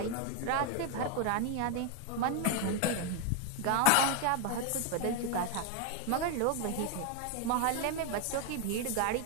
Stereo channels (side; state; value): both; different; correlation 0.01